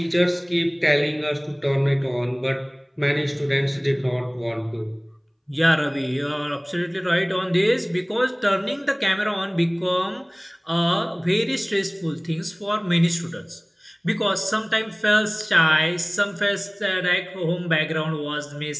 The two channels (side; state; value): both; identical; correlation 1.00